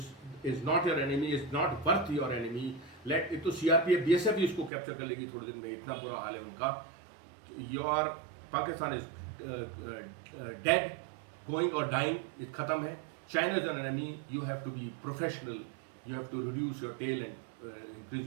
not your enemy, is not worth your enemy. Let it तो CRPF BSF भी इसको कैप्चर कर लेगी थोड़े दिन में. इतना बुरा हाल है उनका. Your Pakistan is dead, going और डाइंग. खत्म है. China is an enemy. You have to be professional You have to reduce your tail and increase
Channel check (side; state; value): left; drops out; at 4.7 s